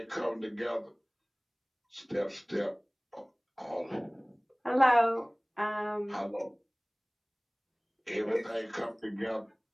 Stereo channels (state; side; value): identical; both; correlation 1.00